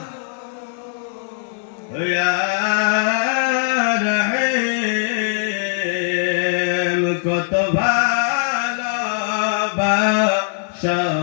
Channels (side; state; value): right; silent; digital silence